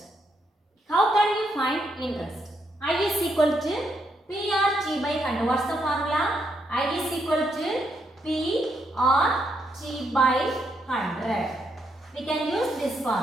How can you find interest? I is equal to PRT by 100. What's the formula? I is equal to PRT by 100. We can use this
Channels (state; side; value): normal; both; correlation 0.78